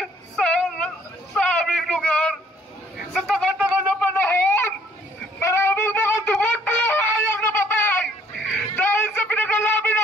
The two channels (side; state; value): both; normal; correlation 0.62